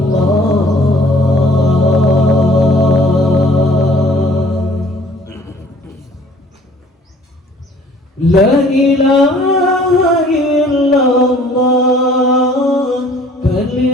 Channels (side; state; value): both; normal; correlation 0.55